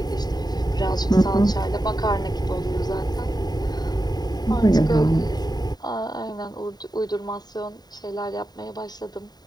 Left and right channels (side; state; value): right; late; 0.20 ms